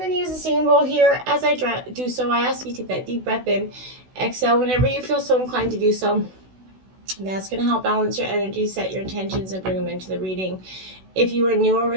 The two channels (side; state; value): left; late; 16 ms